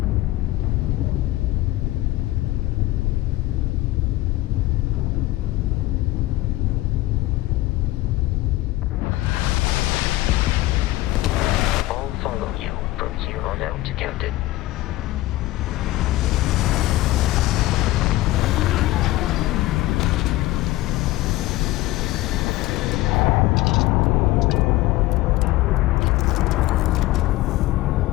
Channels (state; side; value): quieter; right; 17.6 dB